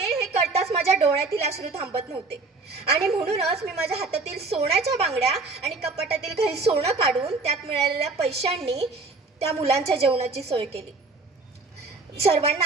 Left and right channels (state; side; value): quieter; left; 3.8 dB